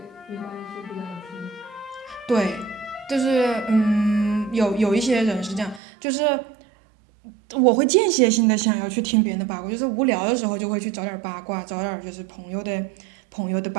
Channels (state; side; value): drops out; left; at 5.8 s